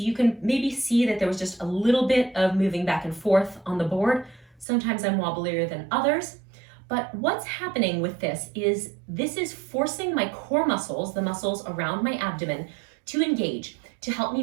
you can maybe see that there was just a little bit of moving back and forth on the board. Sometimes I'm wobblier than others, but what's happening with this is forcing my core muscles, the muscles around my abdomen, to engage to help me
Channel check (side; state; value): left; drops out; at 4.7 s